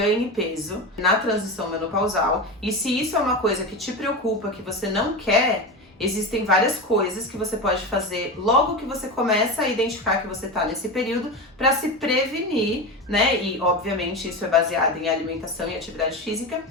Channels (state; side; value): normal; both; correlation 0.21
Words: peso na transição menopausal, e se isso é uma coisa que te preocupa, que você não quer, Existem várias coisas que você pode fazer logo que você começa a identificar que você está nesse período para se prevenir, né? E obviamente isso é baseado em alimentação e atividade física